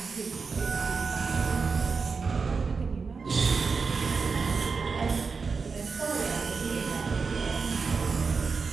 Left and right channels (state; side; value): quieter; left; 5.0 dB